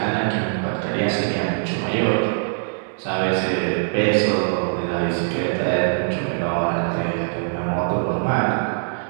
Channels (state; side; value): silent; left; digital silence